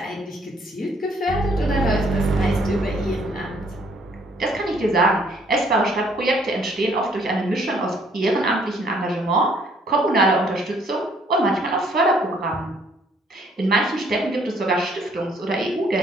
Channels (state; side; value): normal; both; correlation 0.64